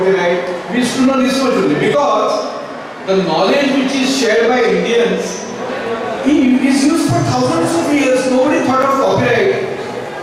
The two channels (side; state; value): both; identical; correlation 1.00